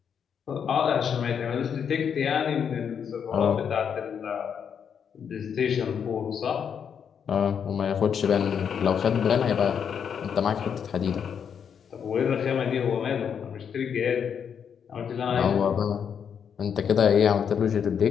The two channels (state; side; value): quieter; right; 7.5 dB